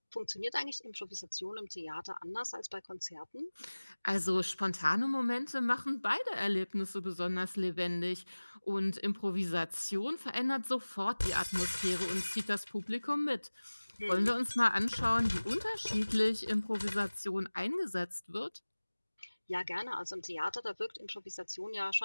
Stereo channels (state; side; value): inverted; both; correlation -1.00